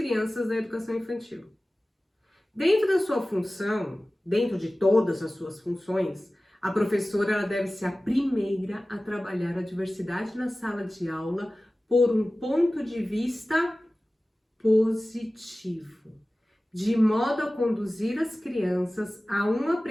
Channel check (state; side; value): normal; both; correlation 0.97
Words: da educação infantil? Dentro da sua função, dentro de todas as suas funções, a professora ela deve ser a primeira a trabalhar a diversidade na sala de aula por um ponto de vista positivo, de modo a conduzir as crianças a um